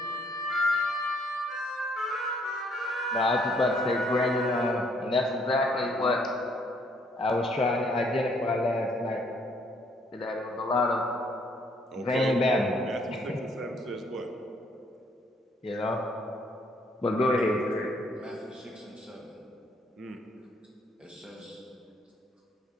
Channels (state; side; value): normal; both; correlation 0.66